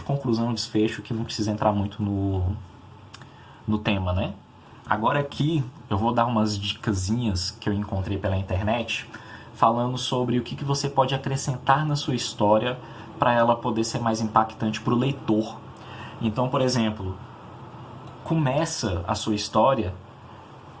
conclusão, desfecho, que não precisa entrar muito no tema, né? Agora aqui eu vou dar umas dicasinhas que eu encontrei pela internet, falando sobre o que você pode acrescentar na sua história para ela poder ser mais impactante para o leitor. Então, por exemplo, começa a sua história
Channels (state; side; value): identical; both; correlation 1.00